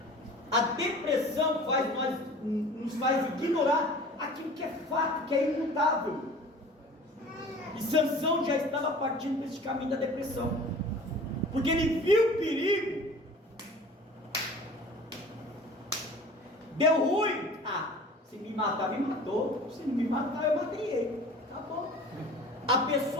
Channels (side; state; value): both; normal; correlation 0.43